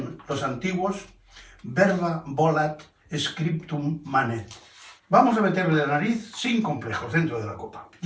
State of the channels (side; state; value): both; identical; correlation 1.00